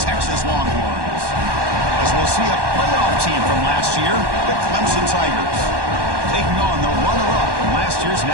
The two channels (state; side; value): late; left; 1.1 ms